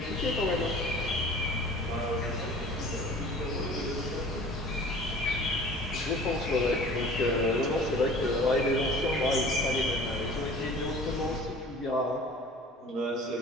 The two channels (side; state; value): both; normal; correlation 0.45